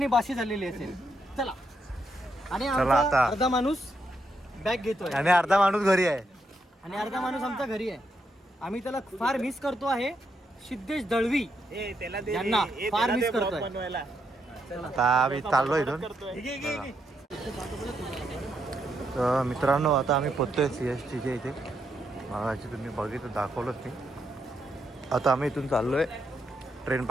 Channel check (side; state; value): both; normal; correlation 0.80